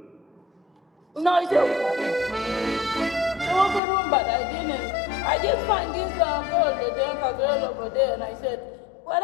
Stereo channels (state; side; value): drops out; right; at 3.8 s